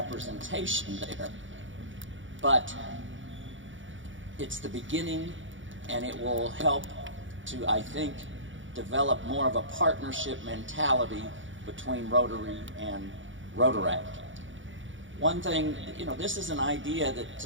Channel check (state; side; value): late; left; 0.56 ms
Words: there, but it's the beginning, and it will help to, I think, develop more of a partnership mentality between Rotary and Rotaract. One thing, this is an idea